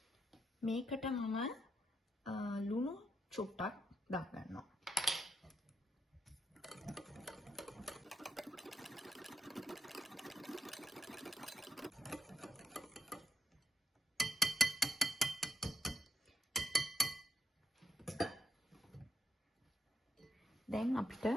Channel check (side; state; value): both; normal; correlation 0.80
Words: මේකට මම ලුණු චුට්ටක් දාගන්නවා. දැන් අපිට